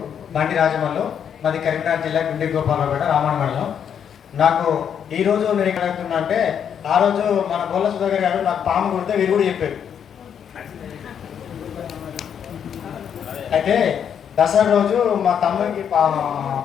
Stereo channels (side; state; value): right; quieter; 8.2 dB